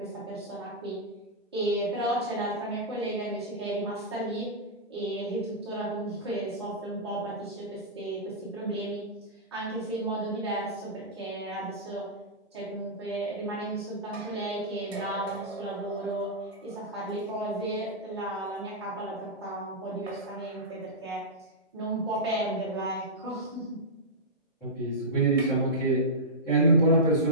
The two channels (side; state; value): both; normal; correlation -0.12